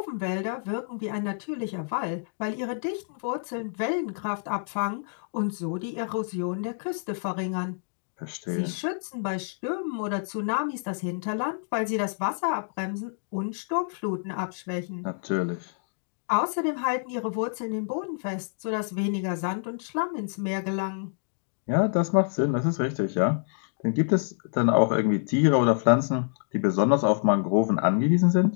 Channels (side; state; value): right; silent; digital silence